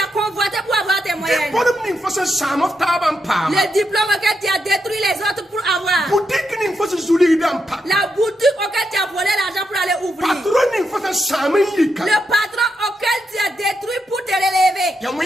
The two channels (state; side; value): normal; both; correlation 0.83